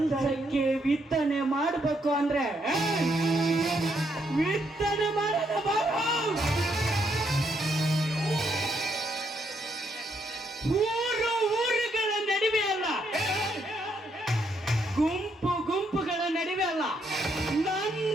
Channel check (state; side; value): normal; both; correlation 0.75